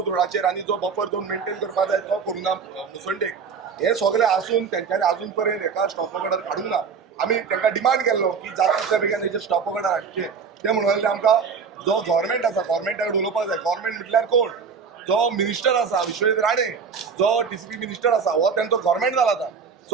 रोडाचेर आनी जो बफर झोन मेंटेन करपाक जाय तो करूंक ना मुसंडेक हे सगळे आसून तांच्यांनी अजून पर्यंत हेका स्टॉप ऑर्डर काडूंक ना आमी तांकां डिमांड केल्लो की जाता तितल्या बेगीन हेचे स्टॉप ऑर्डर हाडचे ते म्हणून आमकां जो गव्हर्मेंट आसा गव्हर्मेंटा कडेन उलोवपाक जाय गव्हर्मेंट म्हटल्यार कोण जो मिनिस्टर आसा विश्वजीत राणे जो TCP मिनिस्टर आसा हो तांचो गव्हर्मेंट जाला आतां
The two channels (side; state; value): left; quieter; 5.9 dB